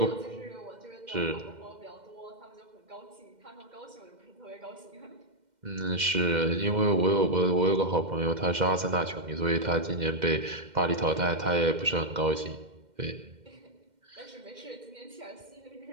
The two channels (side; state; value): left; late; 2.1 ms